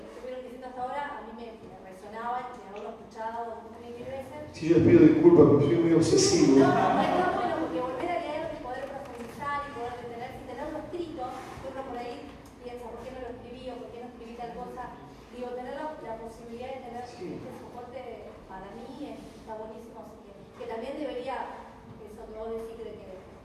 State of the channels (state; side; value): identical; both; correlation 1.00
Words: estuvieron diciendo hasta ahora a mí me resonaba y de haberlo escuchado mil veces. Sí, yo les pido disculpas porque soy muy obsesivo. No, está bueno porque volver a leer y poder profundizar y poder detener, sin tenerlo escrito, uno por ahí piensa, ¿por qué no lo escribí o por qué no escribí tal cosa? Digo, tener la posibilidad de tener este soporte para mí está buenísimo, así que también debería, eso que vos decís de